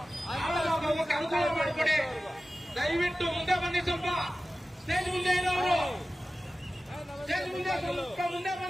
ಹೋಗಕ್ಕೆ ಅನುಕೂಲ ಮಾಡಿಕೊಡಿ. ದಯವಿಟ್ಟು ಮುಂದೆ ಬನ್ನಿ. ಸ್ವಲ್ಪ ಸ್ಟೇಜ್ ಮುಂದೆ ಇರೋರು ಸ್ಟೇಜ್ ಮುಂದೆ ಸ್ವಲ್ಪ ಮುಂದೆ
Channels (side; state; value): both; normal; correlation 0.95